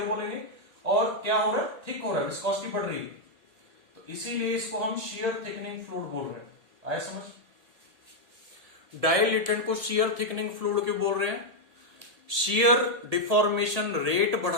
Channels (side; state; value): left; late; 1.8 ms